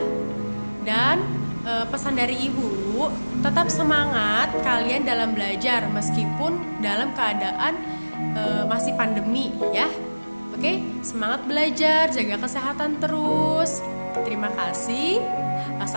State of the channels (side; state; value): both; inverted; correlation -1.00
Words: Dan pesan dari Ibu, tetap semangat kalian dalam belajar meskipun dalam keadaan masih pandemi ya. Oke, semangat belajar, jaga kesehatan terus. Terima kasih.